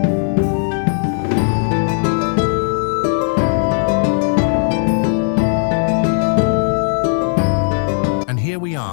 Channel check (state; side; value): silent; right; 68 dB below the other